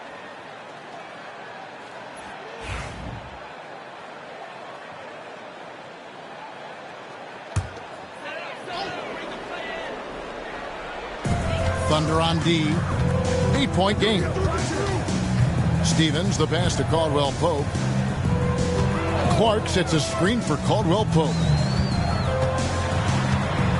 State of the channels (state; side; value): identical; both; correlation 1.00